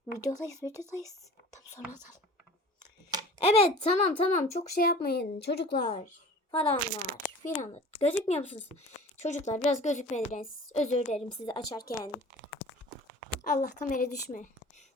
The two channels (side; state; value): both; normal; correlation 0.43